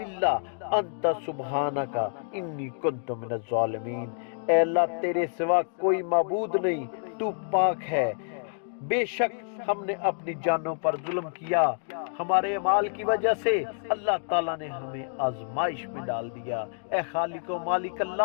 الا انت سبحانک انی کنت من الظالمین۔ اے اللہ، تیرے سوا کوئی معبود نہیں، تو پاک ہے۔ بے شک ہم نے اپنی جانوں پر ظلم کیا، ہمارے اعمال کی وجہ سے اللہ تعالیٰ نے ہمیں آزمائش میں ڈال دیا۔ اے خالق و مالک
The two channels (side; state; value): right; silent; digital silence